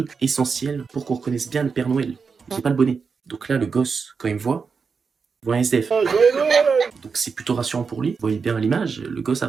essentiel pour qu'on reconnaisse bien le Père Noël. J'ai pas le bonnet. Donc là, le gosse, quand il me voit un SDF. Joyeux Noël. Donc c'est plutôt rassurant pour lui. Vous voyez bien à l'image, le gosse a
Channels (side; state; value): left; quieter; 5.4 dB